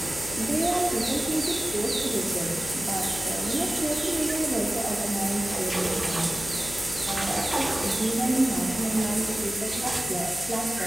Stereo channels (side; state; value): left; noise; hum, 13 dB below the sound